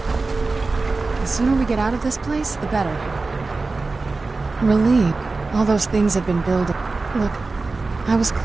The sooner we get out of this place, the better. Relieved. All those things have been building. Look, I was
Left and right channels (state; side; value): quieter; left; 3.7 dB